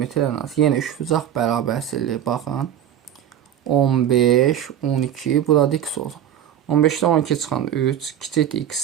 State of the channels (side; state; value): left; quieter; 10.3 dB